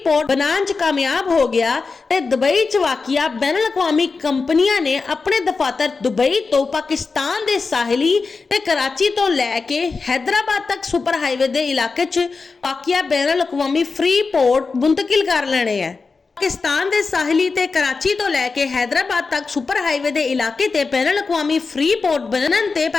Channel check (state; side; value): quieter; right; 4.4 dB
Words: बनाने च कामयाब हो गया ते दुबई च वाकिया बैनुल अक़वामी कंपनियां ने अपने दफातर दुबई तो पाकिस्तान दे साहिली ते कराची तो लैके हैदराबाद तक सुपर हाईवे दे इलाके च वाकिया बैनुल अक़वामी फ्री पोर्ट मुंतकिल कर लेने हैं। पाकिस्तान दे साहिली ते कराची तो लैके हैदराबाद तक सुपर हाईवे दे इलाके ते बैनुल अक़वामी फ्री पोर्ट बनन ते